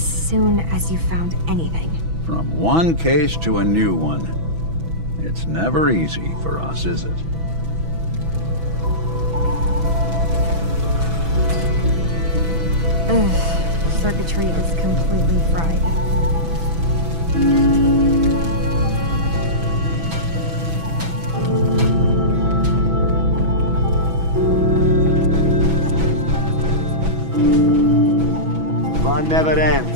soon as you found anything. From one case to a new one. It's never easy for us, is it? Ugh. Circuitry is completely fried. Fun never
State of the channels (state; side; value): late; left; 6.1 ms